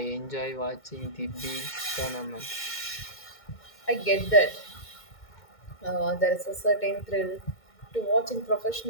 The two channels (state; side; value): late; right; 2.2 ms